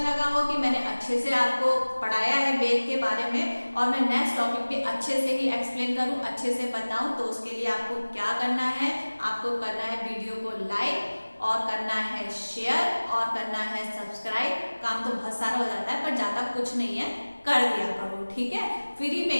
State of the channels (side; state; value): both; inverted; correlation -1.00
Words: हो कि मैंने अच्छे से आपको पढ़ाया है वेद के बारे में और मैं नेक्स्ट टॉपिक पे अच्छे से ही एक्सप्लेन करूँ, अच्छे से बताऊँ, तो उसके लिए आपको क्या करना है, आपको करना है वीडियो को लाइक और करना है शेयर और करना है सब्सक्राइब। काम तो बहुत सारा हो जाता है पर ज़्यादा कुछ नहीं है, कर दिया करो, ठीक है। फ्री में